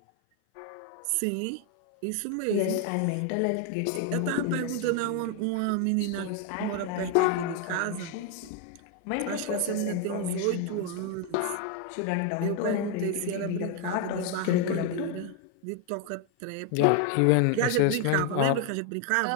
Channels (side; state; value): both; different; correlation 0.01